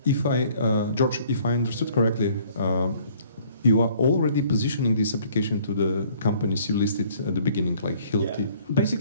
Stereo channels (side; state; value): both; inverted; correlation -0.58